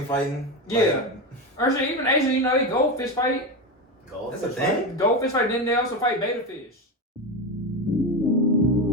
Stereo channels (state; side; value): normal; both; correlation 0.17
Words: fighting. Yeah, or shit. Even Asian, they goldfish fight. That's a thing. Goldfish fight. Then they also fight betta fish.